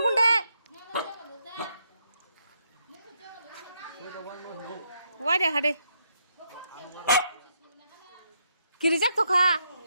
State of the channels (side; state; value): both; inverted; correlation -0.77